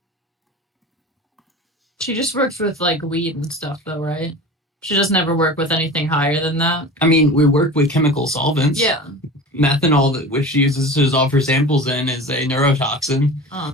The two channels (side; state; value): both; normal; correlation 0.34